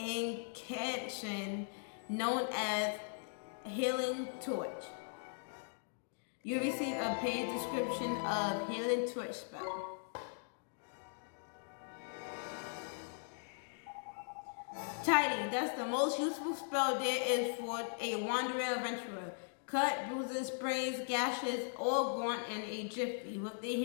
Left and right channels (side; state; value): right; silent; digital silence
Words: known as Healing Torch. You receive a paid description of Healing Torch spell. Tidy, that's the most useful spell there is for a wandering adventurer. Cut, bruises, sprays, gashes, all gone in a jiffy with the